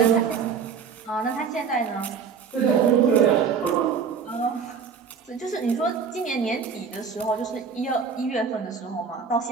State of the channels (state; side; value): quieter; left; 6.3 dB